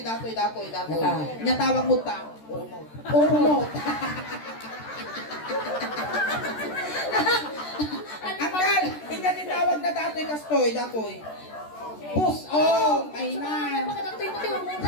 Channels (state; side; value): late; right; 13 ms